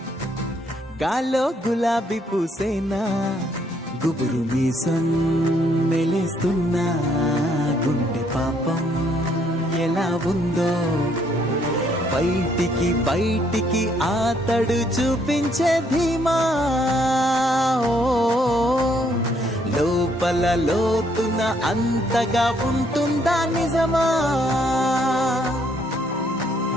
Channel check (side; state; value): both; normal; correlation 0.69